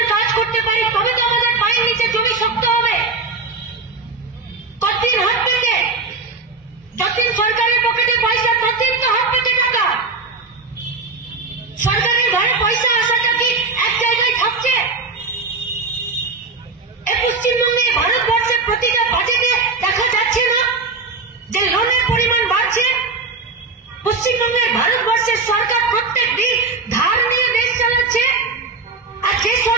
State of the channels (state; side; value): quieter; left; 4.1 dB